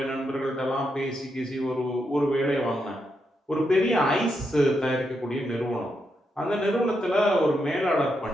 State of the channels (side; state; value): both; normal; correlation 0.82